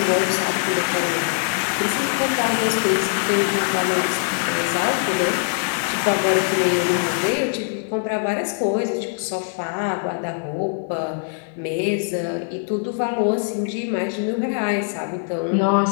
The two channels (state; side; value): silent; right; 64 dB below the other